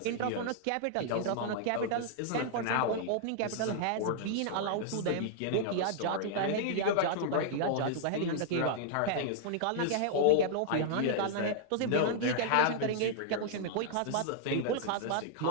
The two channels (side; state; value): both; different; correlation -0.01